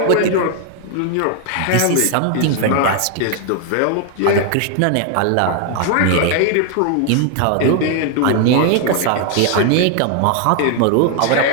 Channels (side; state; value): both; different; correlation 0.00